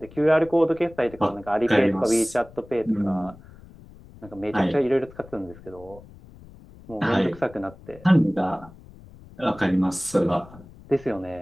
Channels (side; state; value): left; noise; rumble, 21 dB below the sound